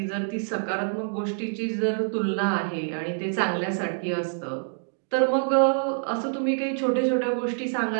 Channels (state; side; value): silent; left; digital silence